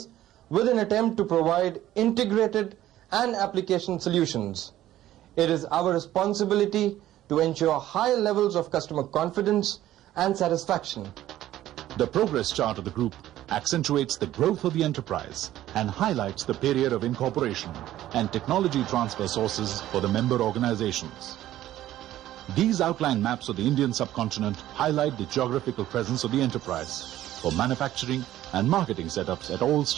with an attempt to provide integrated and application solutions. It is our responsibility to ensure high levels of customer confidence and satisfaction. The progress chart of the group accentuates the growth of the enterprise and highlights the period of incorporation and technology transfer sources for the member organizations. These outline maps of the Indian subcontinent highlight the geographical presence of the enterprise for manufacturing and marketing setups at all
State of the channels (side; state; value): left; quieter; 13.7 dB